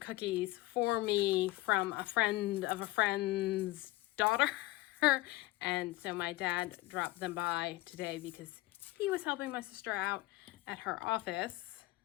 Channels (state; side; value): quieter; right; 18.9 dB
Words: for me from a friend of a friend's daughter. And so my dad dropped them by today because he was helping my sister out at her office.